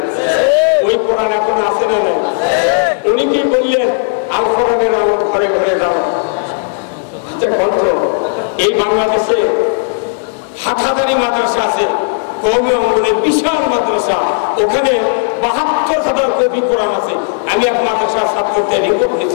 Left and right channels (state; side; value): silent; right; digital silence